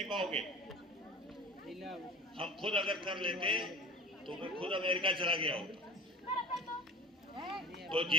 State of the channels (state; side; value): normal; both; correlation 0.36